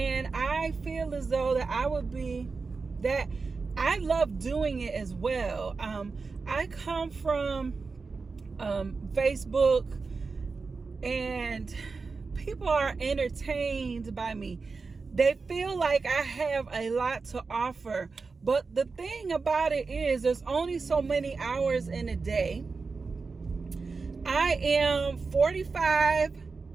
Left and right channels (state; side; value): quieter; left; 4.4 dB